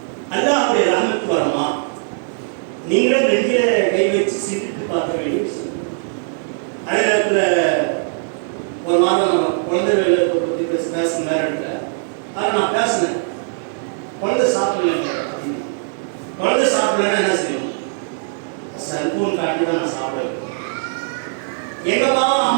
அல்லாஹ்வுடைய ரஹ்மத் வருமா? நீங்களும் நெஞ்சில கை வச்சு சிந்தித்து பார்க்க வேண்டிய விஷயம். அதே நேரத்தில் ஒரு மாதம் நம்ம குழந்தைகளை பற்றி பேசணும் வேற இடத்துல. அதை நான் பேசினேன். குழந்தை சாப்பிடல, குழந்தை சாப்பிடலன்னா என்ன செய்யணும்? செல்போன் காட்டி தான் நான் சாப்பிடுவேன். எங்கப்பா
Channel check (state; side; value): silent; left; digital silence